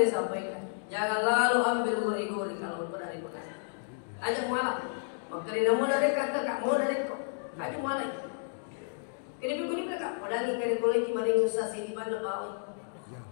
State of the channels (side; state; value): right; silent; digital silence